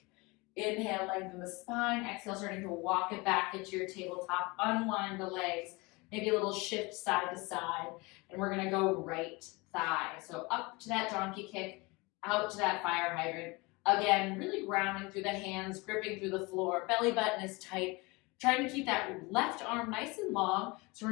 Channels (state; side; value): quieter; right; 25.4 dB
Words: Inhale, lengthen the spine. Exhale, starting to walk it back into your tabletop. Unwind the legs. Maybe a little shift side to side. And we're going to go right thigh. So up to that donkey kick, out to that fire hydrant. Again, really grounding through the hands, gripping through the floor. Belly button is tight. Trying to keep that left arm nice and long so we're